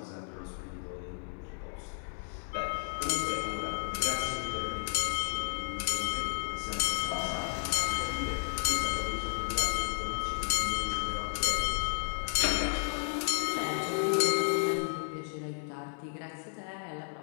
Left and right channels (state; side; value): silent; right; 56 dB below the other